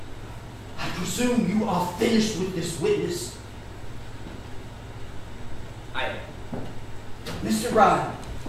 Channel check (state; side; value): identical; both; correlation 1.00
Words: I presume you are finished with this witness. I am. Mr. Ryan.